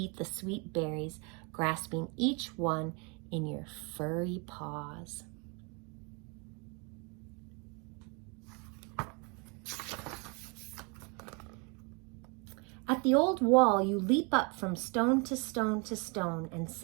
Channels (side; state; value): left; quieter; 32.5 dB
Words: the sweet berries, grasping each one in your furry paws. At the old wall, you leap up from stone to stone to stone and